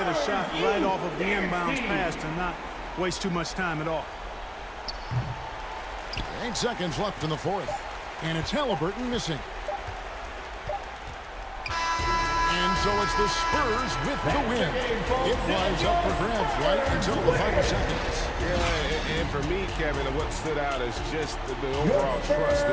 a shot right off of the inbounds pass and not waste too much time at all. 8 seconds left in the fourth. And it's Halliburton missing. And so it's the Spurs with the win. It was up for grabs right until the final seconds. Yeah, and for me, Kevin, what stood out is just the overall trust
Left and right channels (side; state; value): both; identical; correlation 1.00